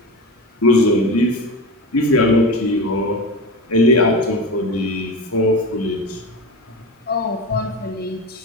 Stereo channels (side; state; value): both; normal; correlation 0.26